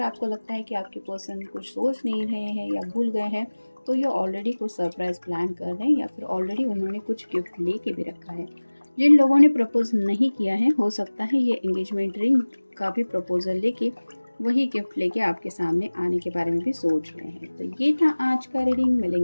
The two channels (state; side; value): inverted; both; correlation -1.00